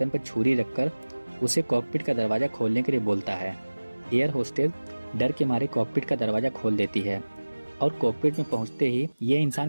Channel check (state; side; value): inverted; both; correlation -1.00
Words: पर छुरी रखकर उसे कॉकपिट का दरवाजा खोलने के लिए बोलता है। एयर होस्टेज डर के मारे कॉकपिट का दरवाजा खोल देती है और कॉकपिट में पहुंचते ही ये इंसान